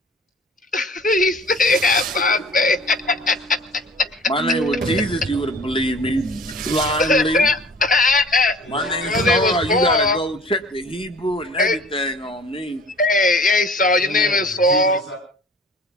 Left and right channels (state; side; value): normal; both; correlation 0.47